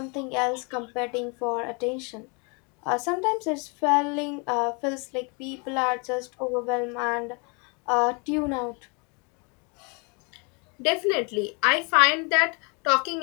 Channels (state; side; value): quieter; right; 32.9 dB